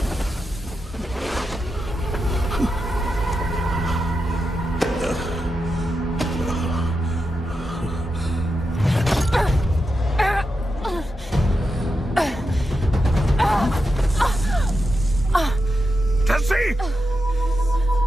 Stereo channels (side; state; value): both; normal; correlation 0.88